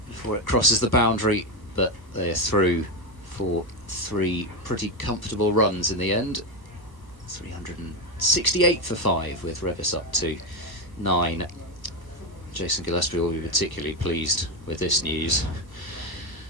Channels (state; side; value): late; right; 1.2 ms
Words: before it crosses the boundary, but they're through for 3 pretty comfortable runs in the end. 368 for 5 with Revis up to 9. Jason Gillespie will be particularly pleased with this news.